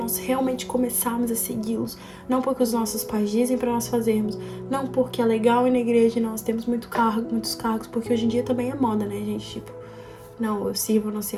realmente começarmos a segui-los. Não porque os nossos pais dizem para nós fazermos, não porque é legal ir na igreja e nós temos muitos cargos, porque hoje em dia também é moda, né, gente? Tipo, não, eu sirvo não sei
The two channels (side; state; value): both; identical; correlation 1.00